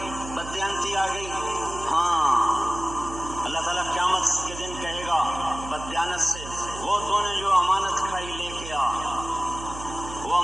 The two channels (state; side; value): noise; right; hum, 12 dB below the sound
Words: بددیانتی آ گئی، ہاں اللہ تعالیٰ قیامت کے دن کہے گا بددیانت سے، وہ تو نے جو امانت کھائی لے کے آ، وہ